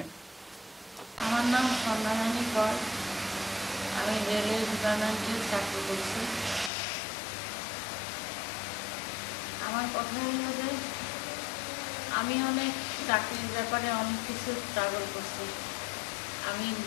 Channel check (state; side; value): drops out; right; at 6.7 s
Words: আমার নাম সন্ধ্যা রানী কর, আমি রেলওয়ে ডিপার্টমেন্টে চাকরি করছি। আমার কথা হলো যে আমি অনেক চাকরির ব্যাপারে অনেক কিছু স্ট্রাগল করছি। আমি